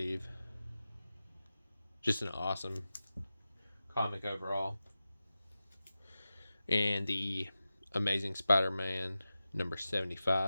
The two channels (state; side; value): inverted; both; correlation -0.94